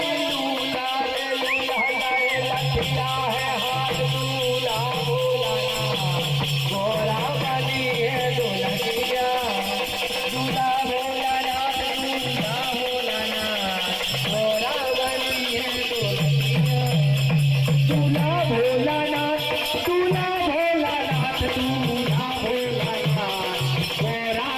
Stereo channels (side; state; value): both; identical; correlation 1.00